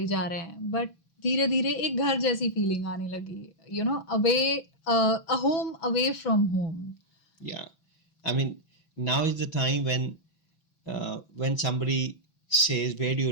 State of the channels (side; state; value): right; late; 6.1 ms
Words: जा रहे हैं, बट धीरे धीरे एक घर जैसी फीलिंग आने लगी. Away a home away from home. Yeah, I mean, now is the time when somebody says, where do you